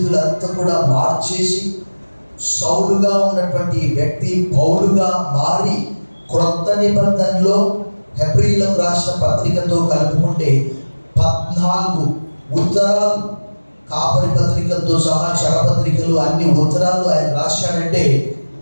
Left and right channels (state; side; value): inverted; both; correlation -1.00